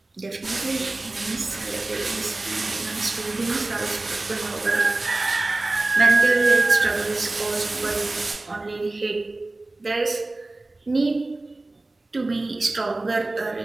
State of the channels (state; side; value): quieter; left; 3.0 dB